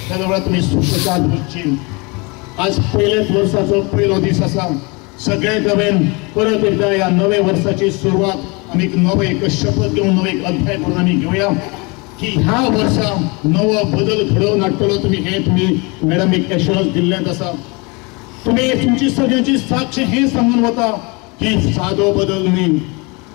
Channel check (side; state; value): right; quieter; 28.4 dB